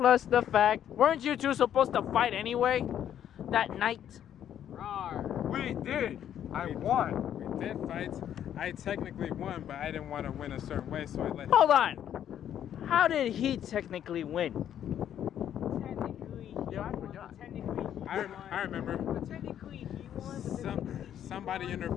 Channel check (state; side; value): quieter; right; 10.2 dB